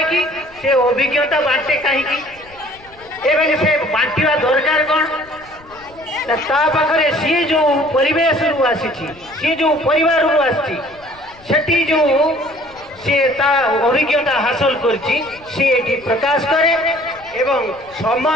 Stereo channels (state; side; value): noise; left; rumble, 25 dB below the sound